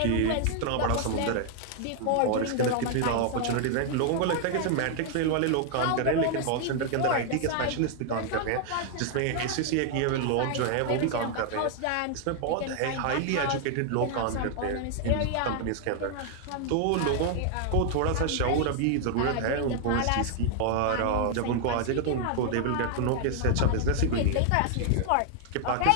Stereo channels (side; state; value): both; different; correlation 0.00